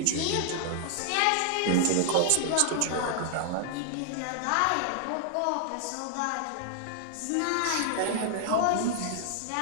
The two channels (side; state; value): both; different; correlation 0.00